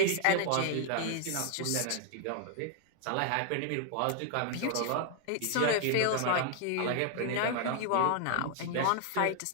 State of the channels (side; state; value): both; different; correlation 0.00